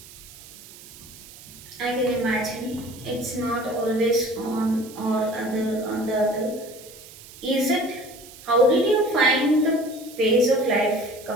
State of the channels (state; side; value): noise; right; hiss, 19 dB below the sound